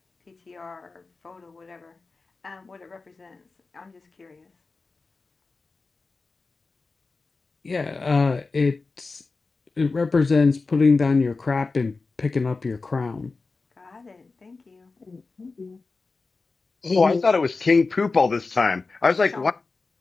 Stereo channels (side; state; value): right; quieter; 3.9 dB